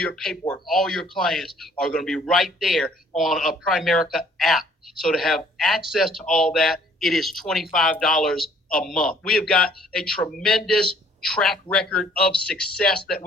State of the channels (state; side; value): normal; both; correlation 0.59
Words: paperwork, all your clients are going to be right there on a Primerica app. So to have access to all that, it is $25 a month. We have got a tremendous track record of success that